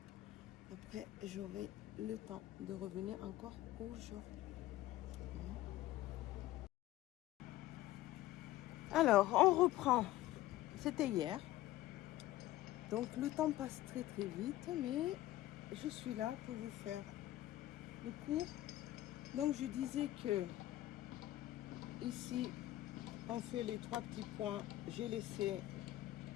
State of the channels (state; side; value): quieter; right; 15.4 dB